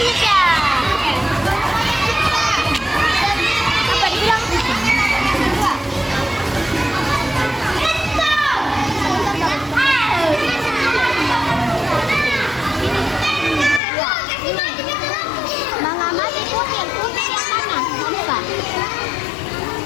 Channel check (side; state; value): right; drops out; at 13.8 s